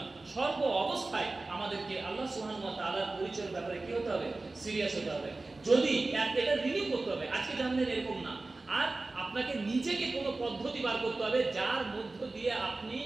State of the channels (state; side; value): quieter; left; 3.3 dB